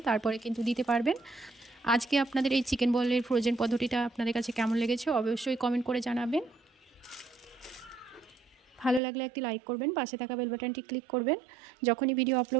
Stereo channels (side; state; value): left; drops out; at 9.0 s